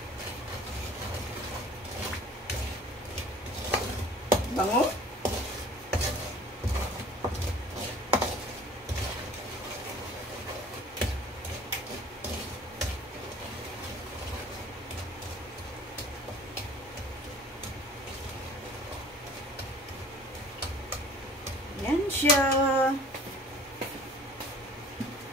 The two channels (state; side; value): normal; both; correlation 0.48